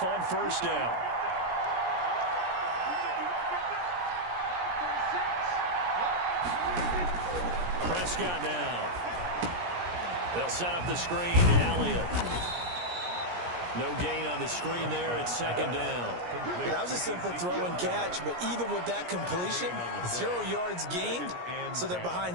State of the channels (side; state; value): left; late; 17 ms